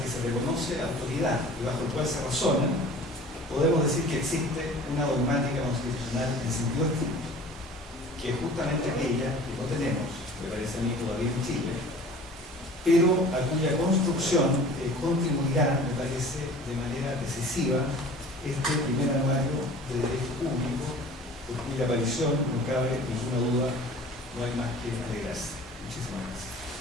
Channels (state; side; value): normal; both; correlation 0.45